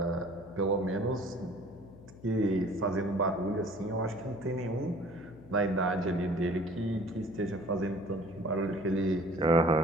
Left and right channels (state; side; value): noise; left; hum, 19 dB below the sound